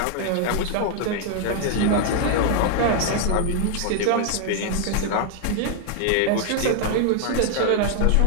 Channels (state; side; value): different; both; correlation 0.00